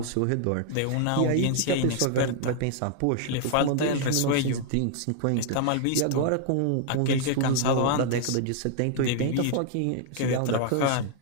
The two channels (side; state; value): both; different; correlation -0.01